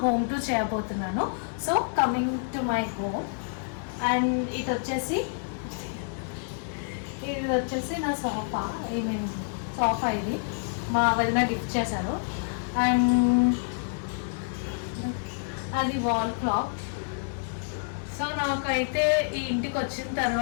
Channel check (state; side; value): silent; right; digital silence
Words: హోమ్ టూర్ చేయబోతున్నాను. So coming to my home and ఇది వచ్చేసి నా సోఫా. సోఫా ఇది మా వదిన గిఫ్ట్ చేశారు. అండ్ అది వాల్ క్లాక్. సో నాకైతే ఈ ఇంటికి వచ్చిన